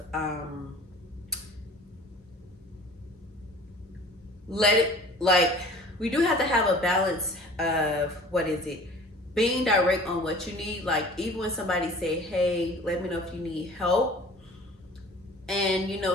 let it like we do have to have a balance of, what is it, being direct on what you need. Like, even when somebody say, hey, let me know if you need help, and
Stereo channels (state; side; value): normal; both; correlation 0.46